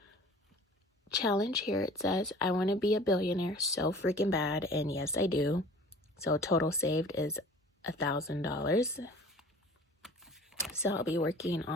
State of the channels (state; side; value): normal; both; correlation 0.45